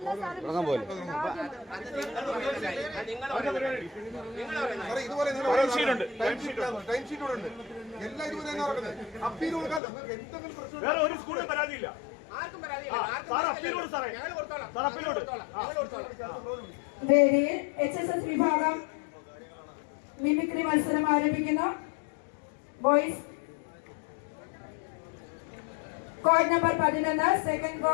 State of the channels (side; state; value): right; drops out; at 9.8 s